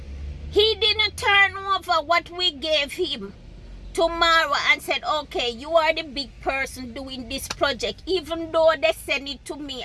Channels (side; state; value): both; identical; correlation 1.00